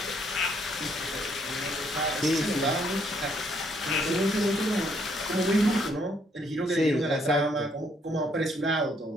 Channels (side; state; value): both; normal; correlation 0.69